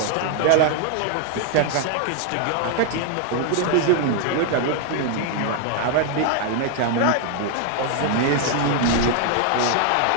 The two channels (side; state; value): both; different; correlation 0.00